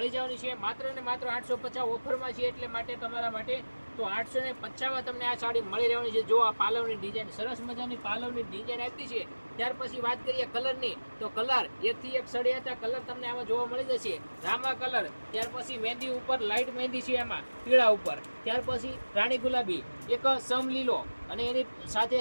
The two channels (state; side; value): inverted; both; correlation -1.00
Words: જવાની છે માત્ર ને માત્ર 850 ઓફરમાં છે. એટલે માટે તમારા માટે તો 850માં તમને આ સાડી મળી રહેવાની છે. જો આ પાલવની ડિઝાઇન, સરસ મજાની પાલવની ડિઝાઇન આપી છે. ત્યાર પછી વાત કરીએ કલરની, તો કલર એકથી એક સળિયાતા કલર તમને આમાં જોવા મળી જશે. રામા કલર, ત્યાર પછી મહેંદી ઉપર લાઇટ મહેંદી છે એમાં પીળા ઉપર, ત્યાર પછી રાણી ગુલાબી, એક સમ લીલો, અને એની સાથે